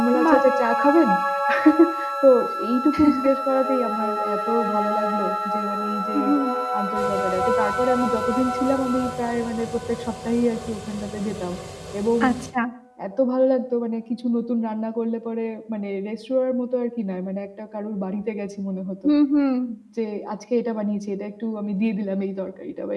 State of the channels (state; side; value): identical; both; correlation 1.00